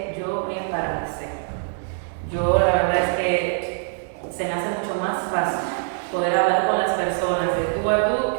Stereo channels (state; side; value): silent; left; digital silence